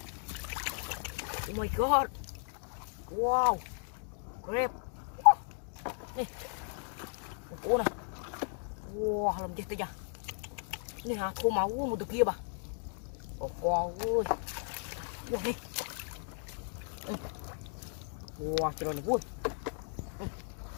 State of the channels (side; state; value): right; silent; 54 dB below the other